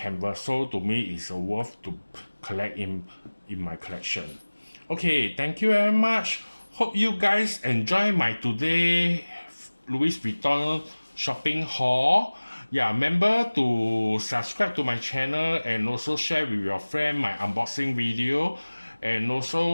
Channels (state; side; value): inverted; both; correlation -1.00